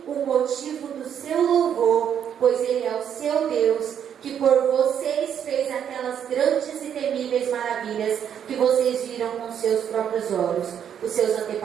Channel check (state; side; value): quieter; left; 8.8 dB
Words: o motivo do seu louvor, pois Ele é o seu Deus, que por vocês fez aquelas grandes e temíveis maravilhas que vocês viram com seus próprios olhos. Os seus